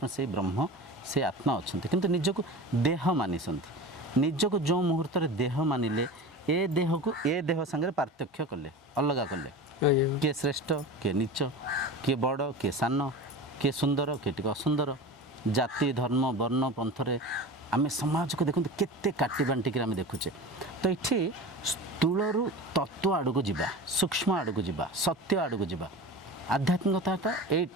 से ब्रह्म से आत्मा अच्छा किंतु निजको देह मानिसंती निजको जो मुहूर्त देह मानिले ए देह को ए देह संगे पार्थक्य कले अलग कले किए श्रेष्ठ किए नीच किए बड़ किए सान किए सुंदर किए टिके असुंदर जाति धर्म वर्ण पंथरे आम समाज को देखते केते काटी बांटिक आम देखुचे तो ये स्थूलू तत्व आड़ को जीवा सूक्ष्म आड़ को जीवा सत्य आड़ को जीवा आध्यात्मिकता ये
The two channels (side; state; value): both; normal; correlation 0.31